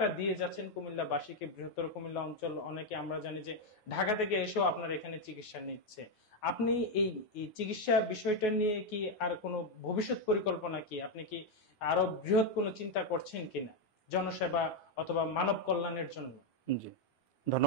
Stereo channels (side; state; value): right; late; 9.3 ms